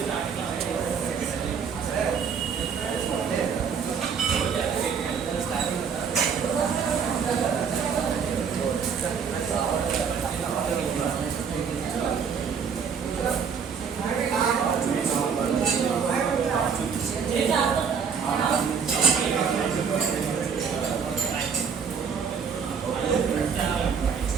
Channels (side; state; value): left; quieter; 6.5 dB